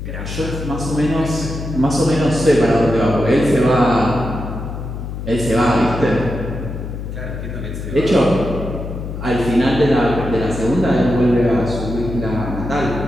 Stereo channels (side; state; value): left; noise; hum, 7 dB below the sound